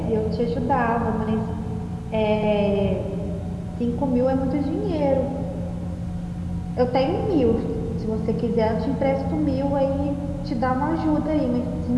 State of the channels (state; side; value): identical; both; correlation 1.00